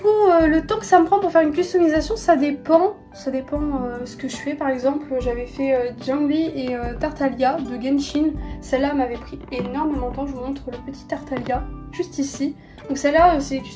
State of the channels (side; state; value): both; identical; correlation 1.00